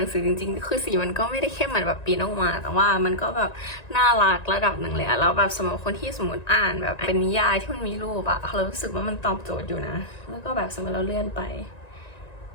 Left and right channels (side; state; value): right; late; 1.9 ms